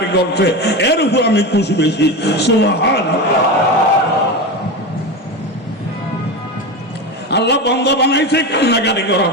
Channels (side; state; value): both; normal; correlation 0.22